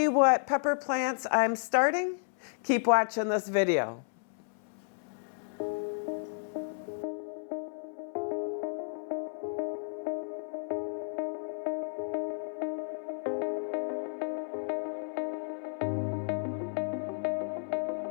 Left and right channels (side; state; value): right; silent; 56 dB below the other